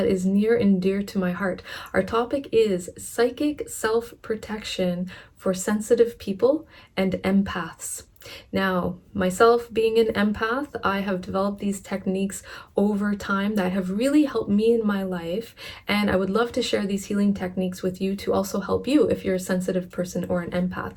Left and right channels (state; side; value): identical; both; correlation 1.00